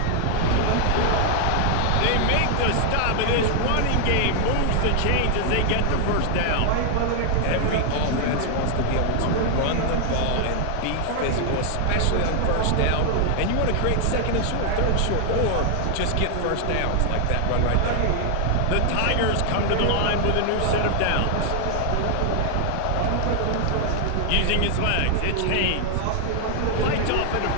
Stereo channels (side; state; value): both; different; correlation 0.00